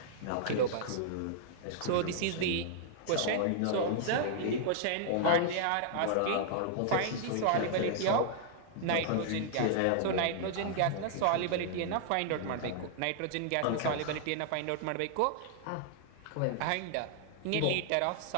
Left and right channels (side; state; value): both; different; correlation -0.01